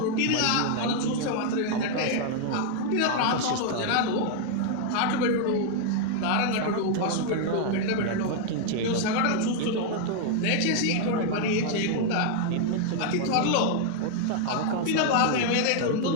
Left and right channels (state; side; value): different; both; correlation 0.00